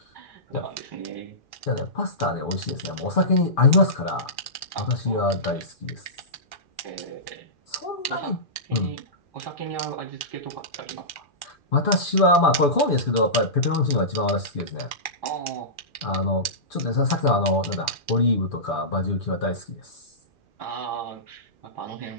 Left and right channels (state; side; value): late; right; 2.4 ms